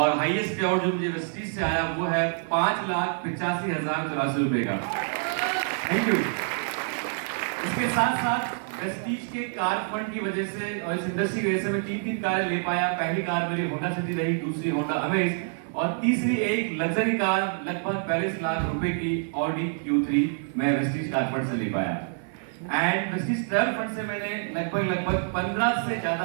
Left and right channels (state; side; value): silent; left; 56 dB below the other